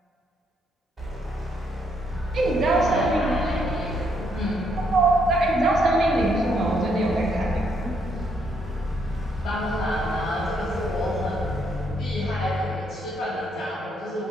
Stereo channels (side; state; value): both; normal; correlation 0.73